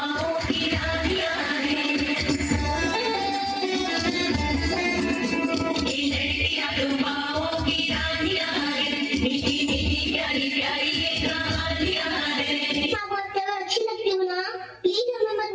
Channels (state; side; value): identical; both; correlation 1.00